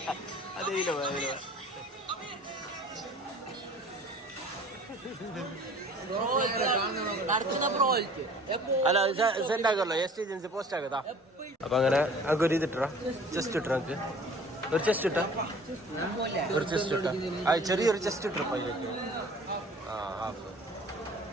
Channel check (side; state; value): both; normal; correlation 0.48